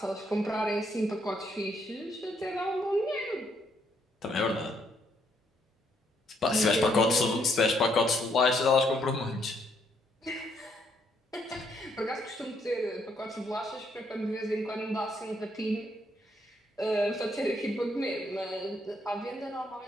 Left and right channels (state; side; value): normal; both; correlation 0.72